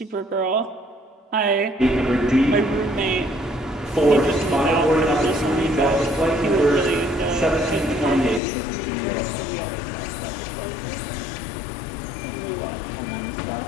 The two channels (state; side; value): drops out; right; at 8.4 s